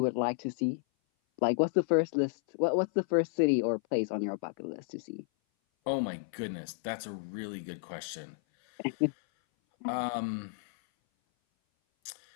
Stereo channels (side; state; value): right; silent; 56 dB below the other